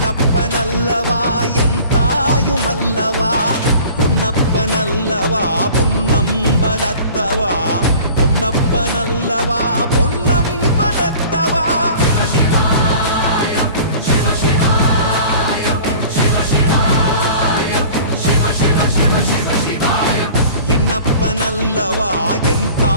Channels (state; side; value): inverted; both; correlation -0.44